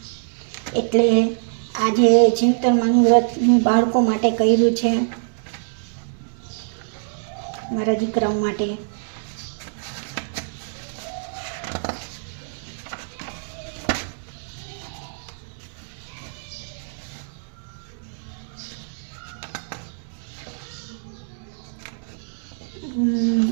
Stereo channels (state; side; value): silent; left; digital silence